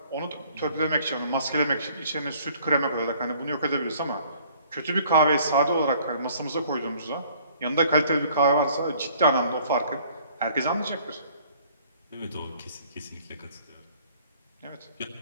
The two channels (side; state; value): both; inverted; correlation -0.57